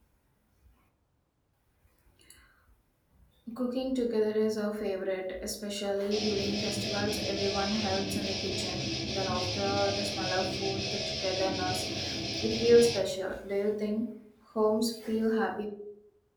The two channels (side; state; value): both; identical; correlation 1.00